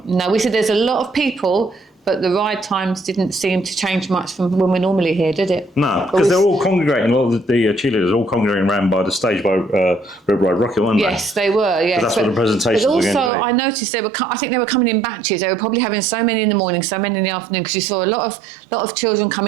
No, we said there's a lot of people, but the ride times didn't seem to change much from when we're normally here, did it? No, because they're all congregating, a lot of the cheerleaders are all congregating around by the stage by Red Ride Rocket, weren't they? Yes, they were, yeah. That's what the presentations were going to be. But also, I noticed I think they were coming in batches. They were probably having so many in the morning, so many in the afternoon, because you saw a lot of children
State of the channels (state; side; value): drops out; left; at 13.3 s